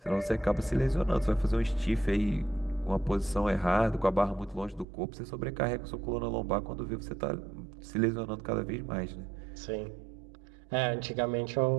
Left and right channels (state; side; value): drops out; left; at 4.9 s